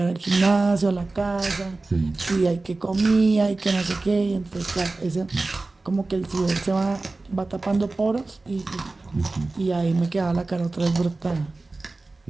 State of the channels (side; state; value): left; quieter; 3.3 dB